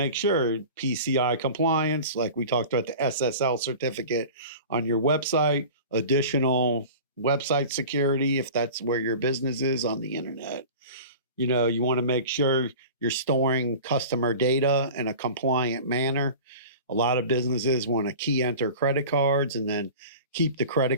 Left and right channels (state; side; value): inverted; both; correlation -0.37